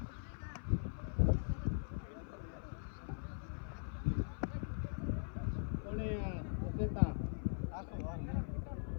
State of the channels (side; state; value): right; silent; 50 dB below the other